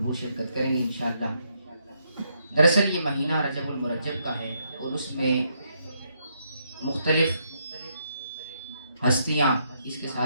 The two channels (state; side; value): inverted; both; correlation -0.76